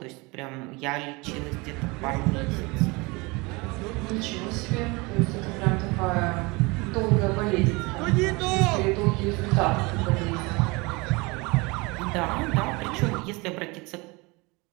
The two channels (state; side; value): quieter; left; 25.6 dB